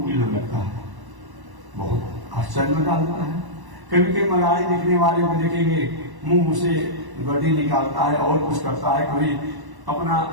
लगता है, बहुत आश्चर्य में डालता है। कभी कभी मदारी दिखने वाले को देखेंगे मुंह से गड्डी निकालता है और कुछ करता है, कभी अपना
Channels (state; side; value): late; left; 1.1 ms